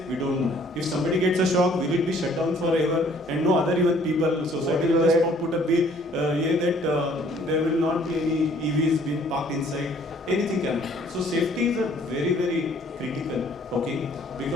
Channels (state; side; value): normal; both; correlation 0.59